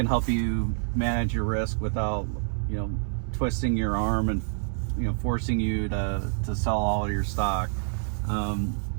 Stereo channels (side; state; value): left; silent; digital silence